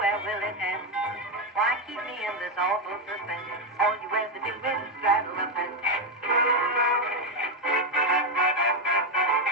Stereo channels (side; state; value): both; normal; correlation 0.06